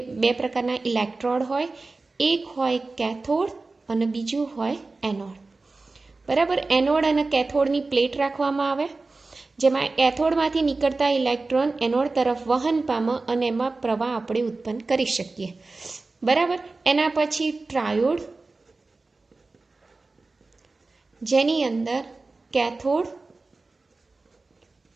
બે પ્રકારના ઇલેક્ટ્રોડ હોય. એક હોય કેથોડ અને બીજું હોય એનોડ. બરાબર. એનોડ અને કેથોડની પ્લેટ રાખવામાં આવે, જેમાં કેથોડમાંથી નીકળતા ઇલેક્ટ્રોન એનોડ તરફ વહન પામે અને એમાં પ્રવાહ આપણે ઉત્પન્ન કરી શકીએ. બરાબર. એના પછી ટ્રાયોડ, જેની અંદર કેથોડ,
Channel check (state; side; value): quieter; left; 3.6 dB